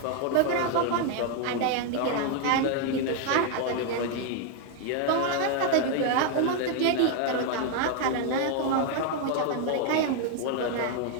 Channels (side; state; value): both; different; correlation 0.00